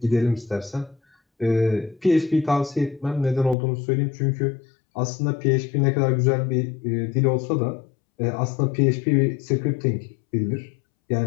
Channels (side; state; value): right; drops out; at 3.6 s